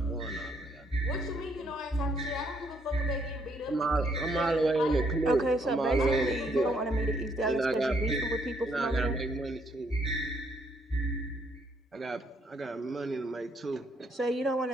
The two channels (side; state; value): both; normal; correlation 0.71